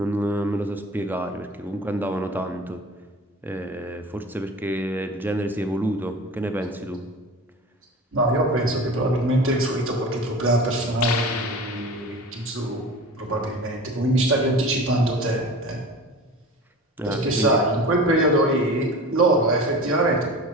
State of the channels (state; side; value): normal; both; correlation 0.36